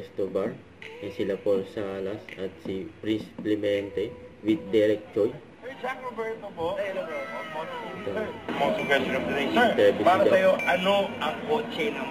bar, ay sila Paul Salas at si Prince Clemente with Derek Choi. Sir Jack Roberto po. Hello, bro. Most question of the day. Sir, para sa'yo, ano ang kotse ng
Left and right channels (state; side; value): identical; both; correlation 1.00